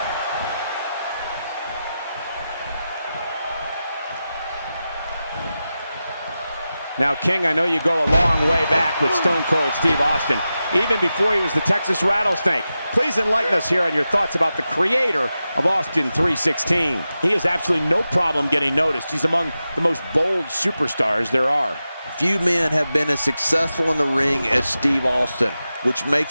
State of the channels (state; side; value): inverted; both; correlation -0.92